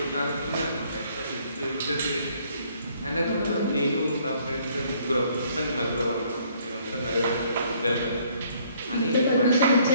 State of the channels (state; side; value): inverted; both; correlation -0.63